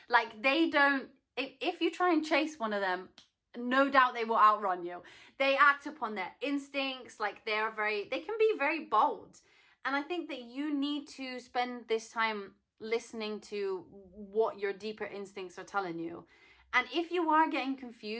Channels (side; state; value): both; identical; correlation 1.00